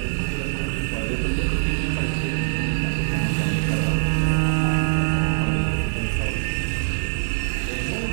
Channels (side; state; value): left; silent; digital silence